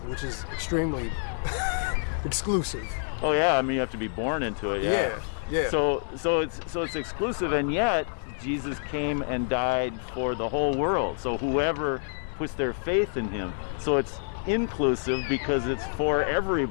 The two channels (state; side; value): silent; right; 60 dB below the other